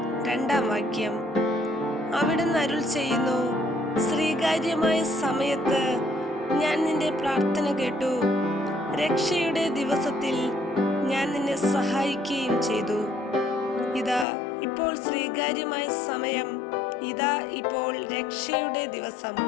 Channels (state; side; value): drops out; right; at 14.2 s